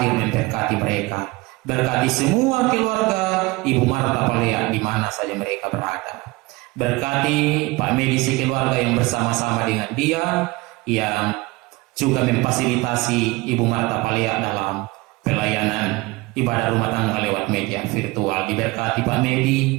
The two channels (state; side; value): quieter; left; 22.3 dB